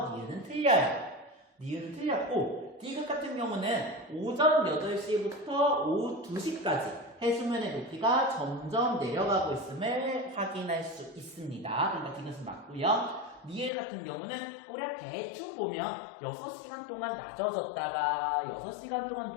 니은은 틀려요. 니은은 틀렸고, 디귿 같은 경우는 오전 8시부터 오후 2시까지 해수면의 높이가 점점 내려가고 있음을 확인할 수 있습니다. 그러니까 디귿은 맞고요. 니을 같은 경우는 우리가 대충 보면 6시간 동안 낮아졌다가 6시간 동안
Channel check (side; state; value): right; drops out; at 13.7 s